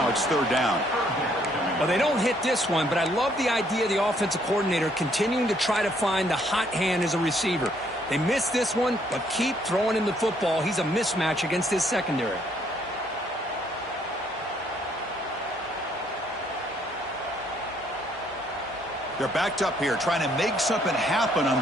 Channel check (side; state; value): both; normal; correlation 0.67